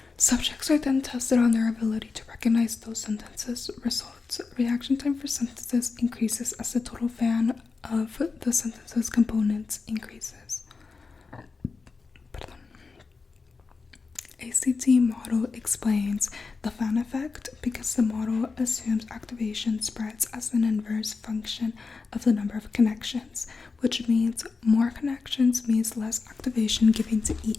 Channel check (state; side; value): quieter; right; 4.4 dB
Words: Subjects are then tested on their ability to recognize those sentences results. Reaction time for sentences increases as the total fan of the sentences components increases. ACT model explains the fan effect because the model assumes activation spreads as an inverse function of the number of connections, which means more connections means less activation given to